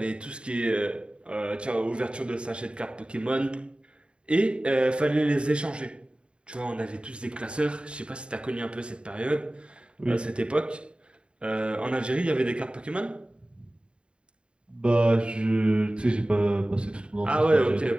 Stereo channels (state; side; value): late; left; 0.054 ms